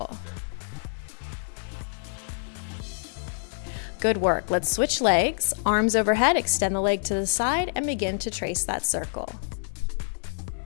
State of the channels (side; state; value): right; silent; digital silence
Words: Good work. Let's switch legs. Arms overhead, extend the leg to the side and begin to trace that circle.